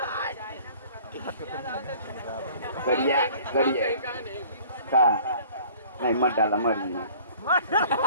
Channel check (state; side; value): inverted; both; correlation -0.51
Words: गरिया गरिया का नहीं मत डाला मरी